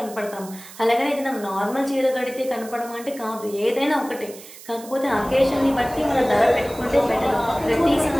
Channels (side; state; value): right; noise; hiss, 17 dB below the sound